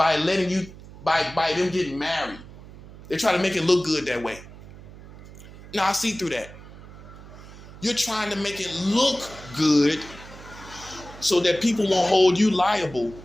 letting you, by them getting married. They try to make it look good that way. Now I see through that. You're trying to make it look good so that people won't hold you liable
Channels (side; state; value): right; noise; hum, 17 dB below the sound